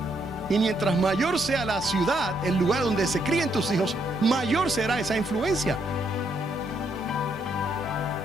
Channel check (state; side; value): normal; both; correlation 0.74